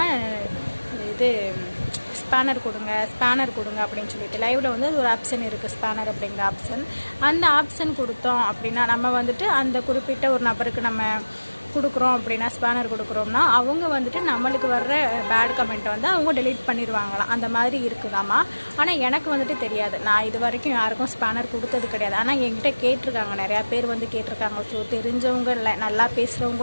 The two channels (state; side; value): inverted; both; correlation -1.00